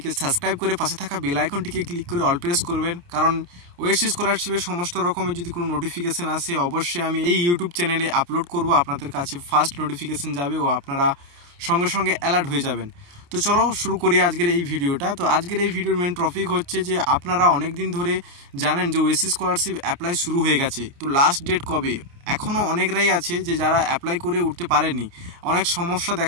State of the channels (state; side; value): late; left; 28 ms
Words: সাবস্ক্রাইব করে পাশে থাকা বেল আইকনটিকে ক্লিক করে অল প্রেস করবেন, কারণ ওএসসি স্কলারশিপের সমস্ত রকমের যদি কোনো নোটিফিকেশন আসে অবশ্যই আমি এই ইউটিউব চ্যানেলে আপলোড করব, আপনাদের কাছে ফার্স্ট নোটিফিকেশন যাবে ও আপনারা সঙ্গে সঙ্গে অ্যালার্ট হয়ে যাবেন। তো চলো শুরু করি আজকের এই ভিডিওটা। তো আজকের এই ভিডিওর মেন টপিক হচ্ছে যে আপনারা অনেক দিন ধরে জানেন যে ওএসসি স্কলারশিপ অ্যাপ্লাই শুরু হয়ে গেছে, তো লাস্ট ডেট কবে এখনও অনেকরাই আছে যে যারা অ্যাপ্লাই করে উঠতে পারেনি। অনেক সমস্যা